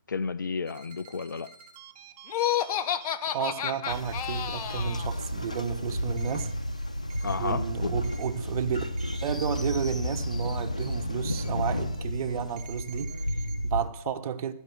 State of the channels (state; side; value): inverted; both; correlation -0.53